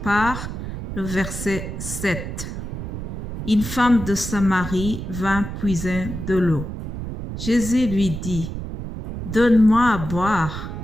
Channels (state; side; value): noise; right; rumble, 7 dB below the sound